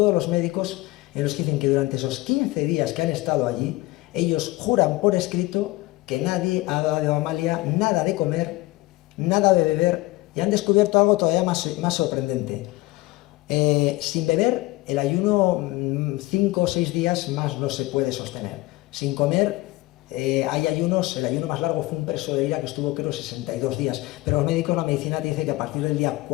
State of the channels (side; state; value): right; quieter; 19.9 dB